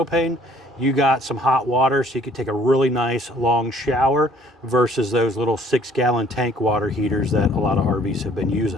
you got some hot water, so you can take a really nice long shower versus those little 6-gallon tank water heaters that a lot of RVs have been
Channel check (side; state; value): both; normal; correlation 0.58